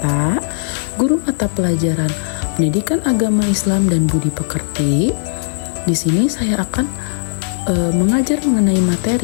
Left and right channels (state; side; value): silent; right; 63 dB below the other